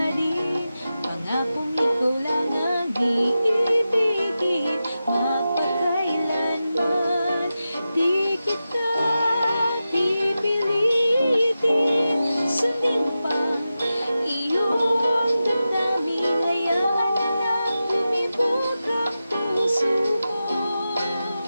rin, pangakong ikaw lang ang iibigin, magpakailanman di kita pipilitin. Sundin pa iyong damdamin, hayaan na lang lumibot ang puso mo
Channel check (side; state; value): both; inverted; correlation -0.92